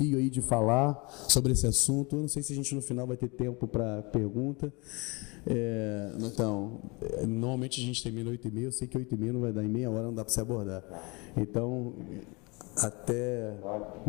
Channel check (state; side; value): quieter; right; 27.7 dB